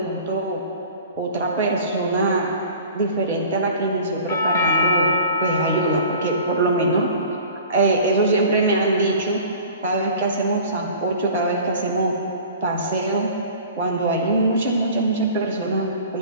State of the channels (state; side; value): inverted; both; correlation -0.43